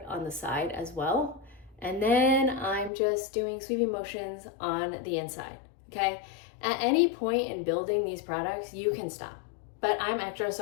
on the side as well. And then I'm just doing sweeping motions on the inside, okay? At any point in building these products, you can stop. But I'm extra,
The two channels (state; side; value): drops out; right; at 2.9 s